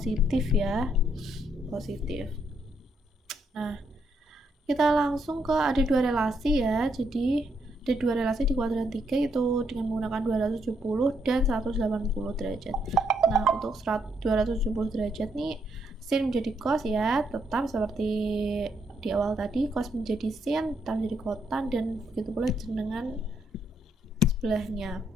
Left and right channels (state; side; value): normal; both; correlation 0.75